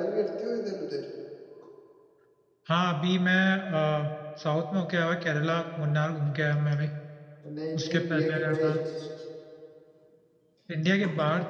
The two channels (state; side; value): identical; both; correlation 1.00